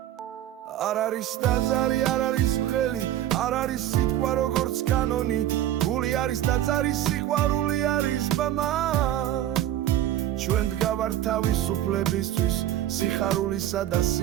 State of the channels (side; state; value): left; quieter; 12.4 dB